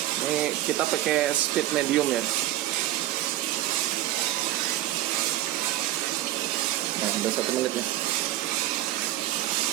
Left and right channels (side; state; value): left; quieter; 14.6 dB